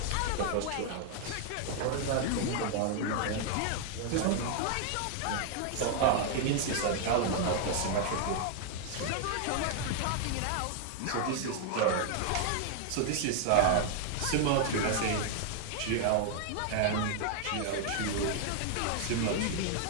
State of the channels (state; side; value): different; both; correlation 0.00